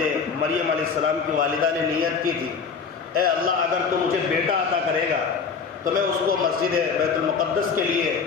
مریم علیہ السلام کی والدہ نے نیت کی تھی، اے اللہ اگر تو مجھے بیٹا عطا کرے گا تو میں اس کو مسجد بیت المقدس کے لیے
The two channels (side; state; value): right; quieter; 5.7 dB